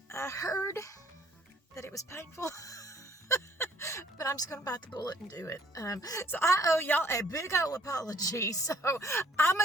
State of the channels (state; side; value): normal; both; correlation 0.61